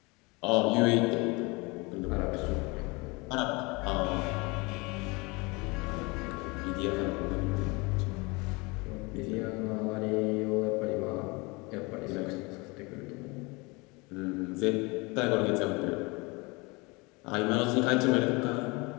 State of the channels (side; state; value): right; quieter; 26.5 dB